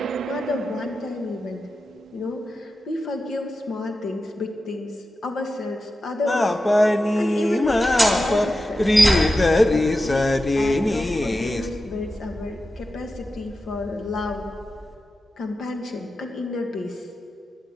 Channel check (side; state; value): both; normal; correlation 0.92